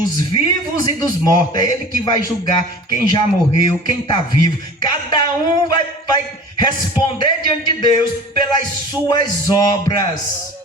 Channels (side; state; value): both; normal; correlation 0.41